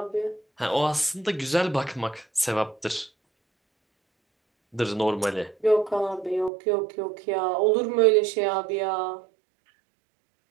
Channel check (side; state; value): left; drops out; at 6.5 s